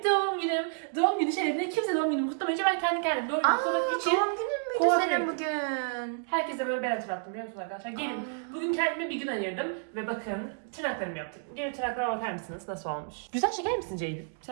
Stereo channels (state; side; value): silent; left; digital silence